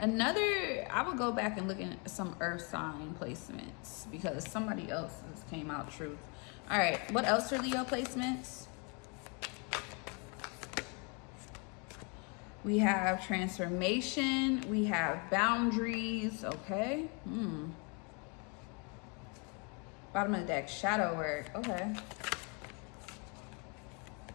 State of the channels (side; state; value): right; quieter; 34.1 dB